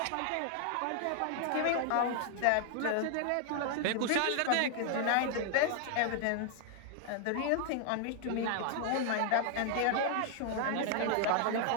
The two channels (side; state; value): both; different; correlation 0.00